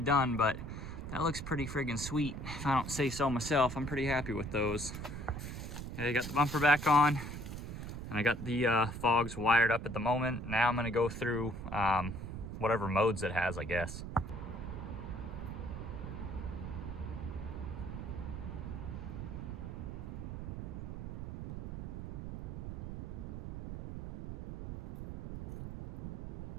But that looks pretty friggin' sweet if I don't say so myself. I'm pretty happy with those. Okay, I got the bumper back on and I got the fogs wired up at the moment. Now I'm going to go through whatever modes it has, I guess.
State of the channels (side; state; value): right; noise; rumble, 7 dB below the sound